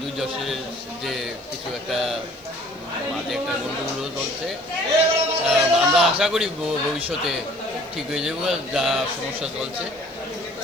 দুই যশের যে কিছু একটা মাঝে একটা গন্ডগোল চলছে। আমরা আশা করি ভবিষ্যতে ঠিক হয়ে যাবো যা সমস্যা চলছে।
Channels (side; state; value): right; noise; hiss, 29 dB below the sound